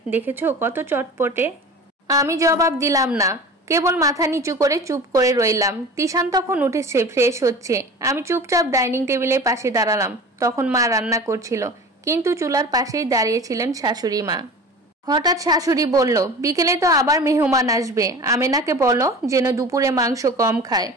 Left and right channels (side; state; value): both; normal; correlation 0.37